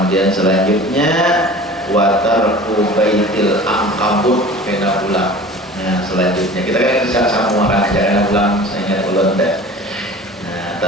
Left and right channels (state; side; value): normal; both; correlation 0.41